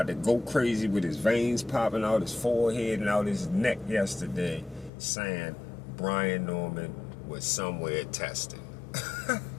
to go crazy with his veins popping out his forehead and out his neck yesterday, saying Brian Norman was somewhere testing.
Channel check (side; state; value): right; drops out; at 4.9 s